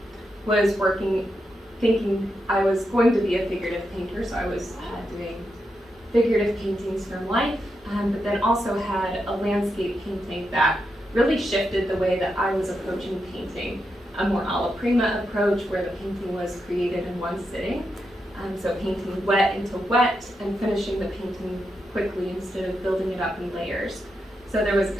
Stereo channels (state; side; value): normal; both; correlation 0.85